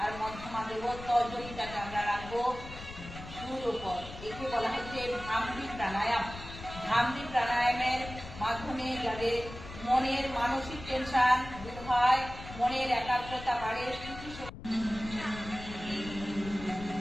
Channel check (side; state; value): left; noise; rumble, 13 dB below the sound